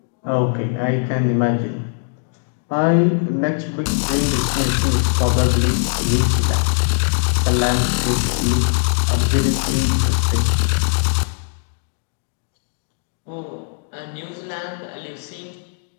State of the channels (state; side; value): silent; right; 66 dB below the other